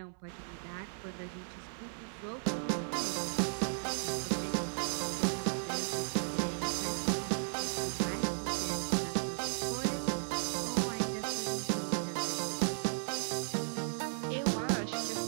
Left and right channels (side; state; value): left; silent; 54 dB below the other